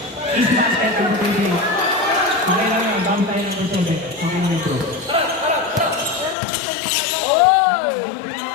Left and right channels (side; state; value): right; drops out; at 6.4 s